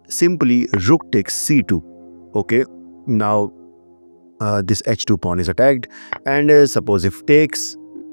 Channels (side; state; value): both; inverted; correlation -1.00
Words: simply rook takes c2. Okay, now this h2 pawn is attacked, and suppose if takes,